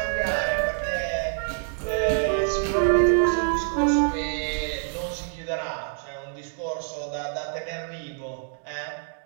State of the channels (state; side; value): silent; left; 61 dB below the other